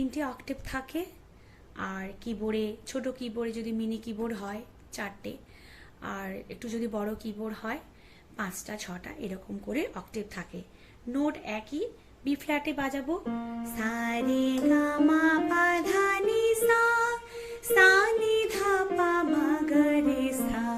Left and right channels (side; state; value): both; identical; correlation 1.00